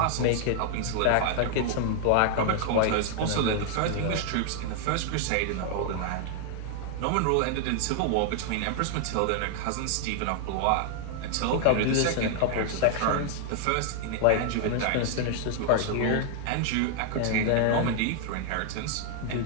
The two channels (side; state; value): both; different; correlation 0.00